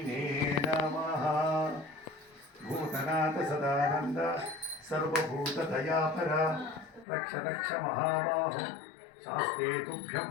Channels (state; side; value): drops out; right; at 7.1 s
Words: ನಮಃ. ಭೂತನಾಥ ಸದಾನಂದ ಸರ್ವಭೂತ ದಯಾಪರ ರಕ್ಷ ರಕ್ಷ ಮಹಾಬಾಹೋ ಶಾಸ್ತ್ರೇ ತುಭ್ಯಂ